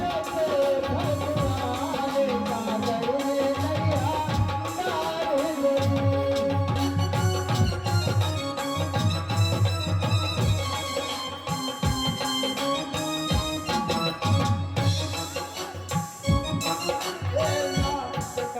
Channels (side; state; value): both; identical; correlation 1.00